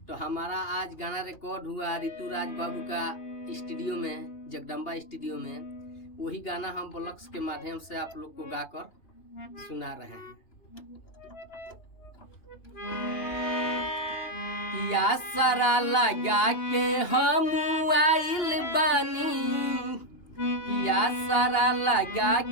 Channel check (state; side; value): late; right; 2.8 ms